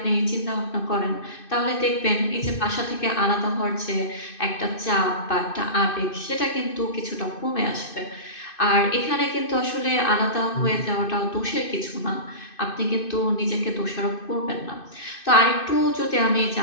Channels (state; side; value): late; right; 2.6 ms